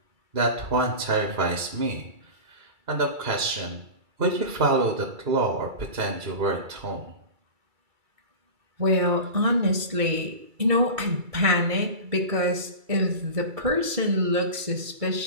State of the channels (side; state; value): left; late; 2.3 ms